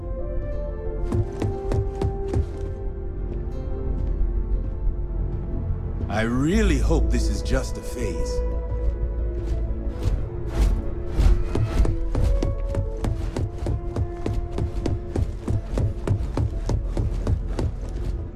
I really hope this is just a phase.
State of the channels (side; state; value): both; identical; correlation 1.00